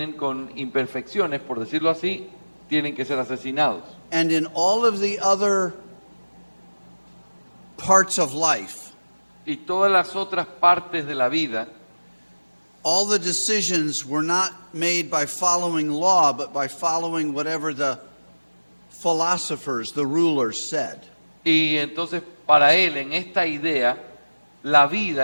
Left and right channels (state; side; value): inverted; both; correlation -1.00